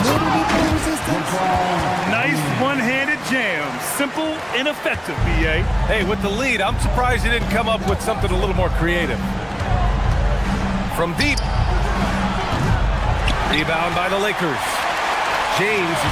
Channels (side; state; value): both; identical; correlation 1.00